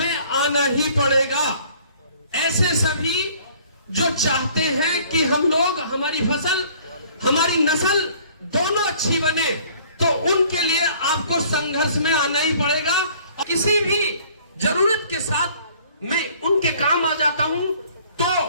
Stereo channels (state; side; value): inverted; both; correlation -0.55